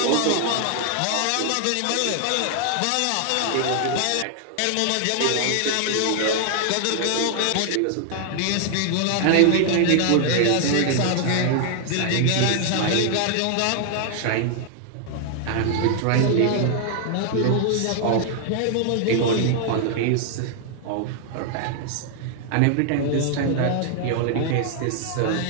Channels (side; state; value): both; different; correlation 0.00